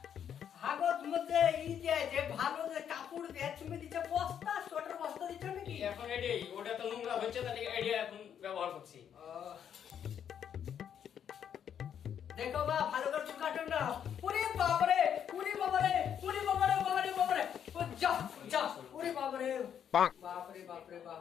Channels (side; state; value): right; quieter; 8.7 dB